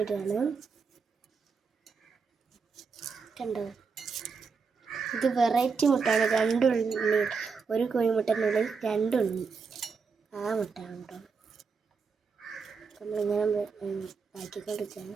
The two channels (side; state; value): left; quieter; 5.2 dB